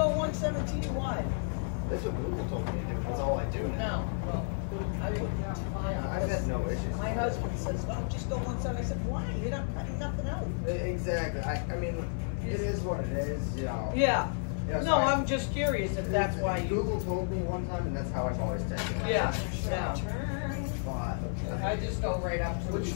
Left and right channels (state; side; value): silent; right; 57 dB below the other